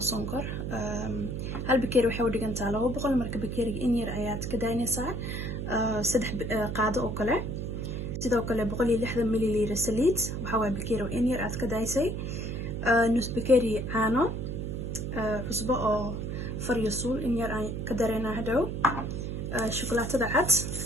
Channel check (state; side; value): noise; right; hum, 4 dB below the sound